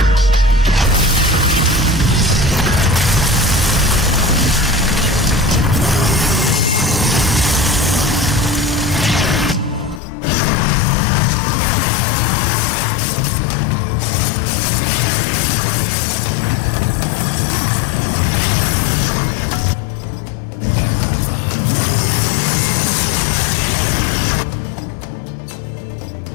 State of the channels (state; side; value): drops out; right; at 10.0 s